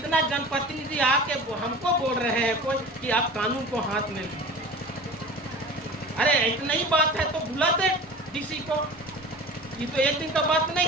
जनप्रतिनिधि आके हमको बोल रहे हैं कोई कि आप कानून को हाथ में लीजिए। अरे इतना ही बात है तो बुलाते डीसी को, ये तो एक दिन का बात नहीं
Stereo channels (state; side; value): normal; both; correlation 0.37